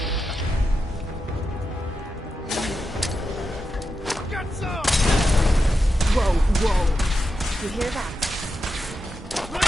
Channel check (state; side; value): normal; both; correlation 0.88